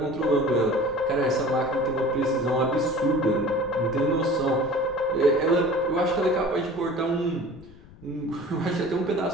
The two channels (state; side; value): noise; left; rumble, 22 dB below the sound